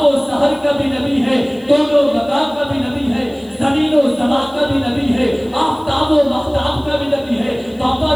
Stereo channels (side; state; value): left; noise; hiss, 29 dB below the sound